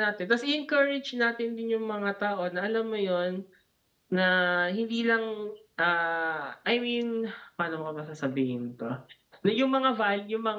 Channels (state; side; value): identical; both; correlation 1.00